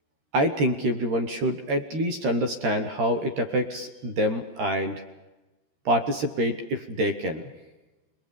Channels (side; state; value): left; late; 13 ms